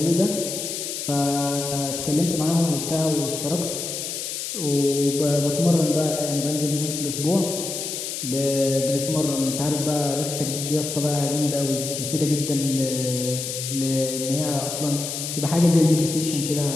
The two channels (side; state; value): left; noise; hiss, 5 dB below the sound